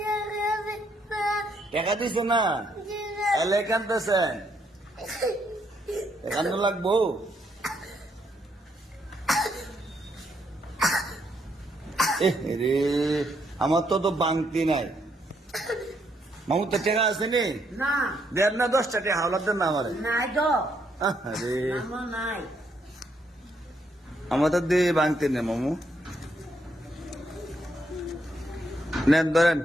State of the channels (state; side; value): normal; both; correlation 0.74